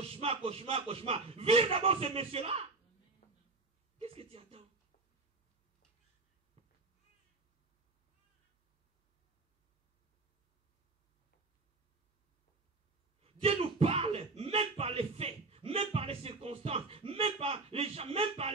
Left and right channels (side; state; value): left; quieter; 3.6 dB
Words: d'abord ce monsieur-là. Qu'est-ce que tu attends? Dieu nous parle, même par les faits, même par les circonstances, même par les gens, même par